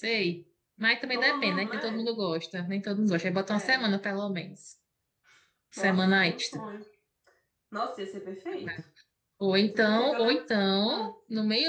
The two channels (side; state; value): both; identical; correlation 1.00